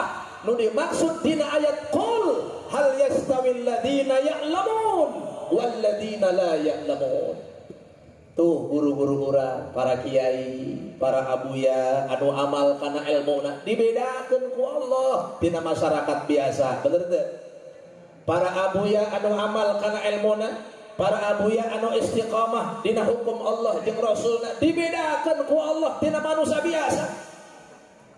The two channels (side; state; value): both; identical; correlation 1.00